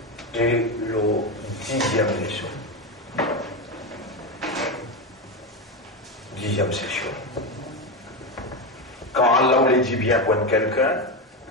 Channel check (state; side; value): normal; both; correlation 0.14